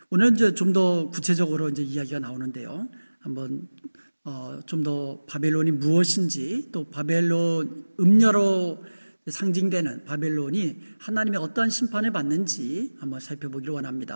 오늘 이제 좀 더 구체적으로 이제 이야기가 나오는데요. 한번 좀 더 바벨론이 무엇인지, 또 바벨론 음녀로 상징되는 바벨론이 하나님의 어떤 심판을 받는지 한번 살펴보기를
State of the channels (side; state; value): both; inverted; correlation -1.00